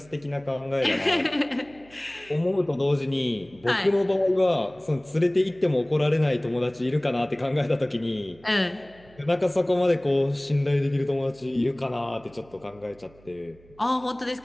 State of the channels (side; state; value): right; noise; hum, 26 dB below the sound